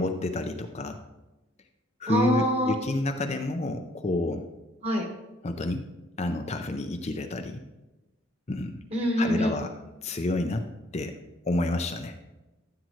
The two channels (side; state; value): both; normal; correlation 0.64